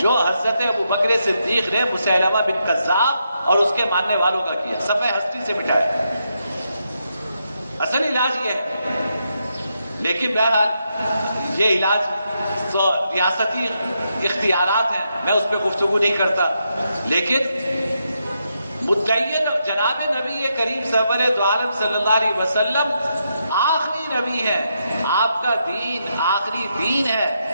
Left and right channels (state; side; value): inverted; both; correlation -0.82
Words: جو حضرت ابوبکر صدیق نے مسیلمہ بن کذاب اور اس کے ماننے والوں کا کیا، صفحہ ہستی سے مٹایا۔ اصل علاج یہ ہے، لیکن بہرحال یہ علاج تو ریاستی اختیارات ہیں، میں اس پہ گفتگو نہیں کرتا، لیکن مدعی جناب نبی کریم سرور دو عالم صلی اللہ علیہ وسلم آخری نبی ہے، آپ کا دین آخری دین ہے،